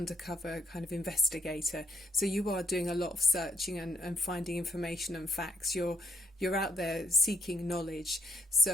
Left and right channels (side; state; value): both; normal; correlation 0.74